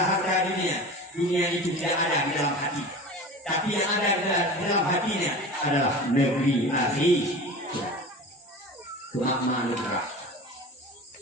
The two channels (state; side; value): normal; both; correlation 0.34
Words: harta dunia itu tidak ada di dalam hati. Tapi yang ada di dalam hatinya adalah negeri akhir. Kemakmuran negara.